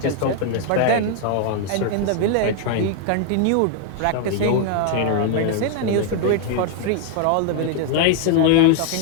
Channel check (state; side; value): different; both; correlation 0.00